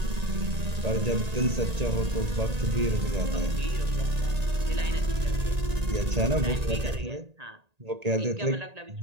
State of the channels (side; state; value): left; late; 1.8 ms